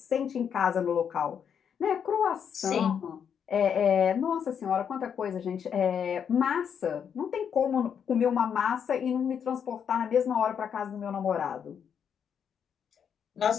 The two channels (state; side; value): quieter; right; 7.7 dB